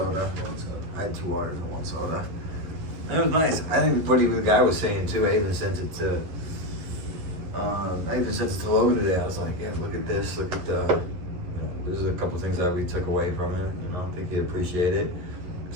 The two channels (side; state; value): left; late; 11 ms